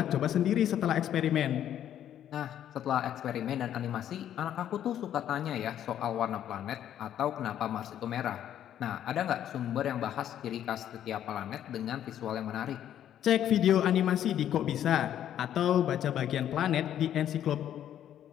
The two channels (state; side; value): quieter; right; 10.7 dB